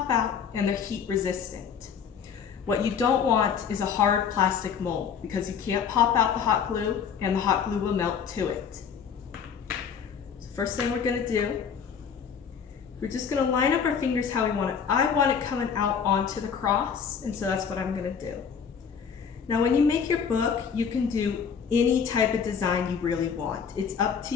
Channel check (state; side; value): quieter; right; 7.0 dB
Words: out, and they're heat resistant. What you don't want is a hard plastic mold because you can't pop out the hot glue and the hot glue will melt to it. So first thing we're gonna do, we're just gonna line up our fingers how we want it. I want it coming out onto the cross, and so that's what I'm gonna do. Now when you make your book, you can do any type of design you really want. It's up to